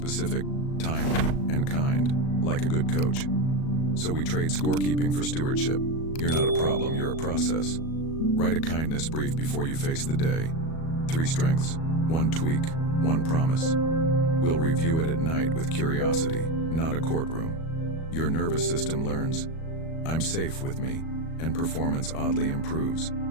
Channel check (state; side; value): late; right; 37 ms